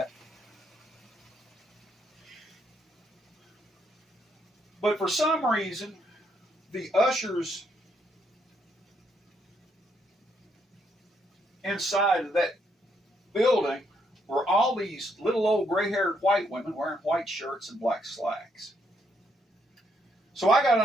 But for some reason, the ushers inside of that building were all these little old gray-haired white women wearing white shirts and black slacks. So I got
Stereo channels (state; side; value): normal; both; correlation 0.74